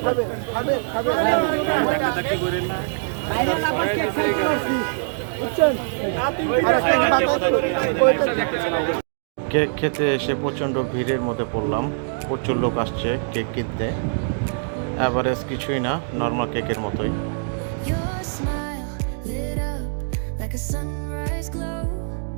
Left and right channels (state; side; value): silent; left; digital silence